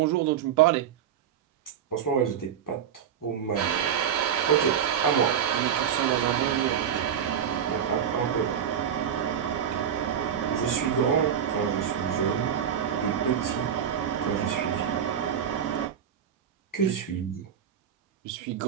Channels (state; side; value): quieter; left; 8.7 dB